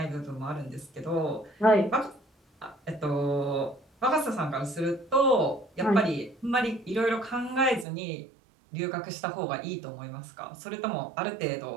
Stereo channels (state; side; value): drops out; left; at 7.9 s